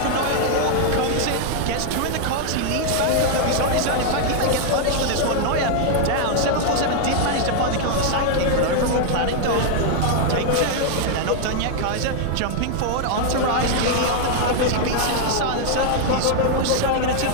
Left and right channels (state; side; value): different; both; correlation 0.00